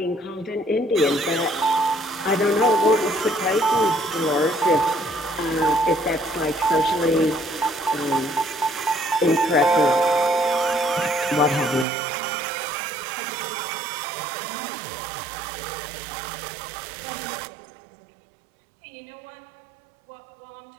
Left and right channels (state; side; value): drops out; left; at 11.9 s